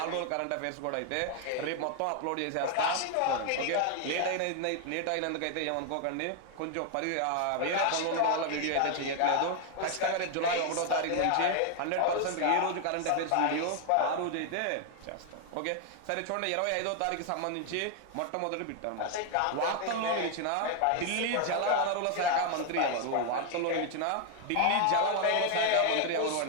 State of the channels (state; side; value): different; both; correlation 0.00